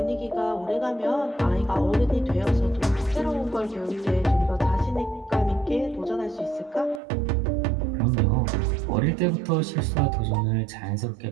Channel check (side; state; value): left; drops out; at 7.0 s